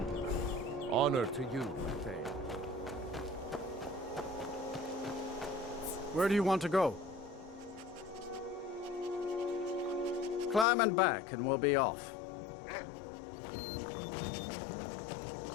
Honor to you, Thane. Where do you want to go? Climb and back, and we'll be off.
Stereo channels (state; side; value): drops out; right; at 10.7 s